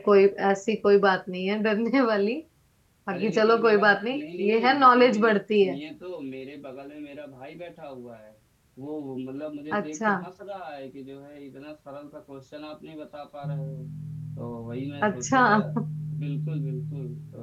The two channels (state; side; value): identical; both; correlation 1.00